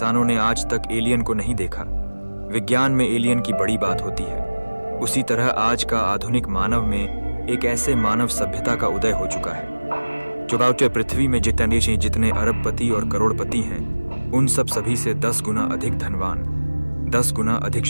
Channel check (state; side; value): inverted; both; correlation -1.00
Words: ने आज तक एलियन को नहीं देखा, विज्ञान में एलियन की बड़ी बात होती है, उसी तरह आज का आधुनिक मानव में एक ऐसे मानव सभ्यता का उदय हो चुका है जो बाउटे पृथ्वी में जितने अरबपति और करोड़पति हैं, उन सभी से 10 गुना अधिक धनवान, 10 गुना अधिक